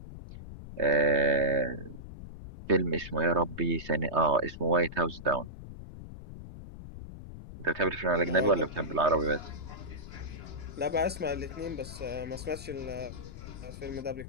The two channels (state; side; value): noise; left; rumble, 13 dB below the sound